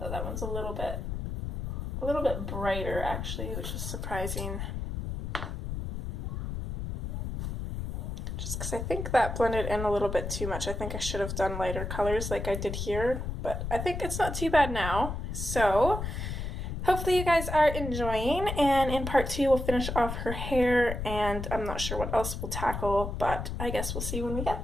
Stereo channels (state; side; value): noise; left; rumble, 4 dB below the sound